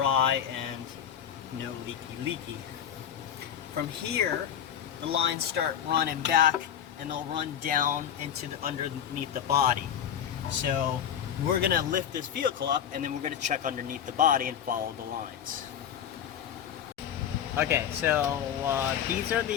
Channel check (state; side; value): quieter; right; 9.3 dB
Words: and no leaky. From here, the lines start running back, and they'll run down into underneath the body. So we're going to lift this vehicle up, and then we're going to check underneath the body and follow the lines. Okay, so these are